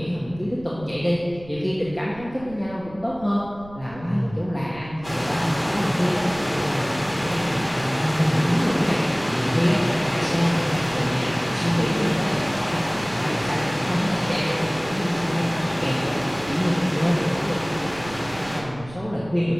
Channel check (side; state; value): right; noise; rumble, 18 dB below the sound